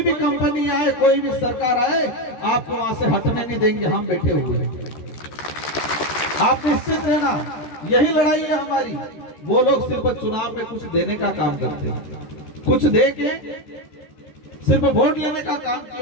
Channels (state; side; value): late; right; 13 ms